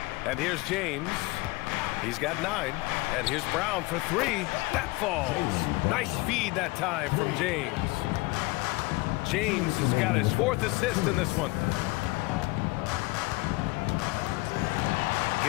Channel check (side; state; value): right; quieter; 22.7 dB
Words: And here's James. He's got 9. And here's Brown for 3. That falls. Nice feed that time from James. James has got his 4th assist in this one.